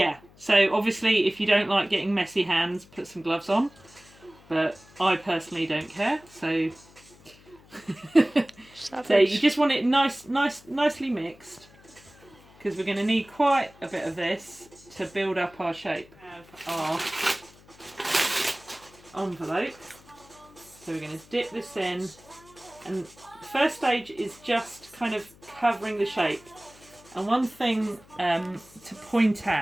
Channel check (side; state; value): left; noise; hum, 25 dB below the sound